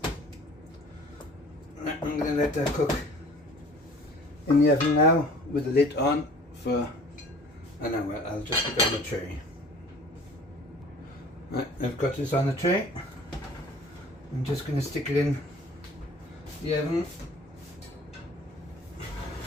I'm going to let that cook in the oven now with the lid on for an hour. I'll just put it on the tray. Right, I've got this on the tray. I'm just going to stick it in the oven.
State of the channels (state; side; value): normal; both; correlation 0.48